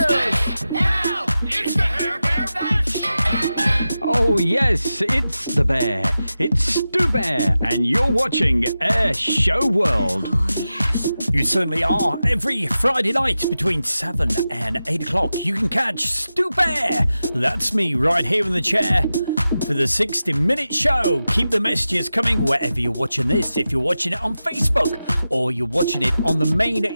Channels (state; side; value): inverted; both; correlation -0.93